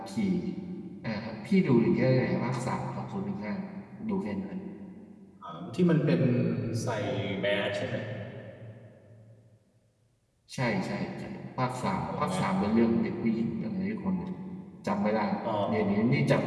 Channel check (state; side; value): identical; both; correlation 1.00